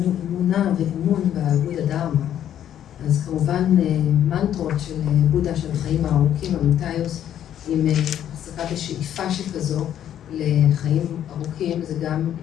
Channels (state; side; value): quieter; right; 10.5 dB